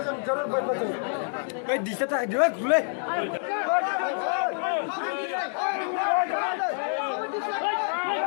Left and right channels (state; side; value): silent; right; 60 dB below the other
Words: जरूर बैठना चाहिए दिसत आहे दिवस खुले